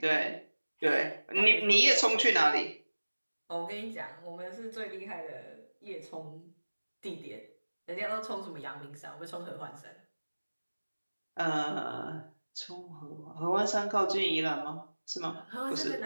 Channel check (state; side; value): inverted; both; correlation -1.00